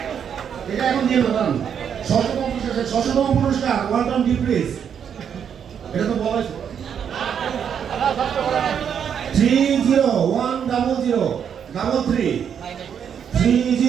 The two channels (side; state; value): left; quieter; 8.0 dB